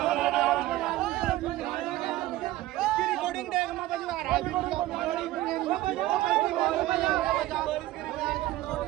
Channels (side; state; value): left; quieter; 16.2 dB